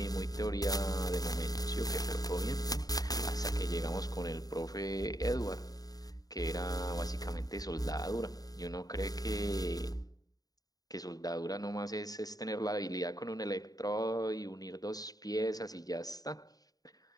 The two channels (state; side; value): late; right; 0.18 ms